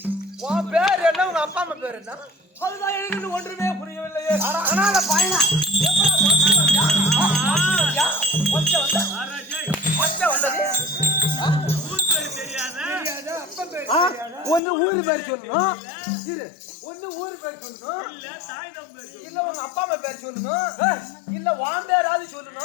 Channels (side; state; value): right; drops out; at 14.6 s